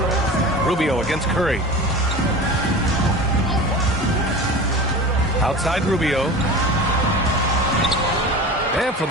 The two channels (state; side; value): normal; both; correlation 0.34